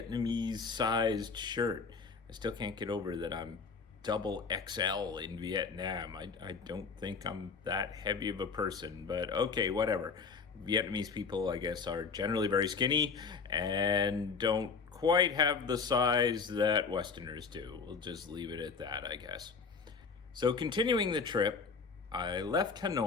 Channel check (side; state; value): right; quieter; 5.2 dB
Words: sized shirt. I still can't get over that I'm double XL in Vietnam. I don't think I'm that heavy of a person, but okay, whatever. Vietnamese people, I guess, are generally very skinny and don't quite have the size that Westerners do. We'll just leave it at that, I guess. So, continuing the trip, I left